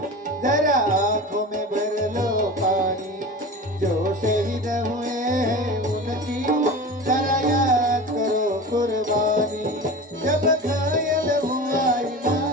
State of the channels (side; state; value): both; normal; correlation 0.32